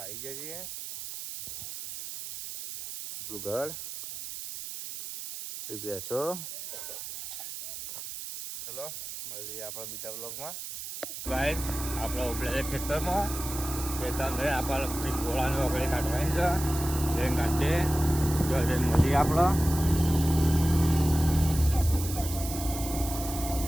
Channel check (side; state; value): right; noise; hiss, 9 dB below the sound